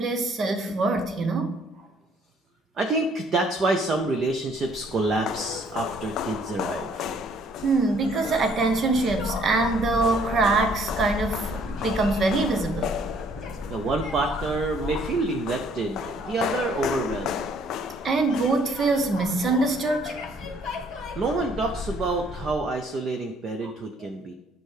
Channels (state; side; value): normal; both; correlation 0.62